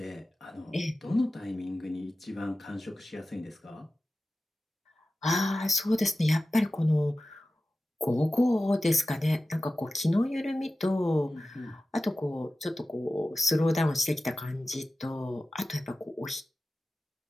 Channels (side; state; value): both; normal; correlation 0.95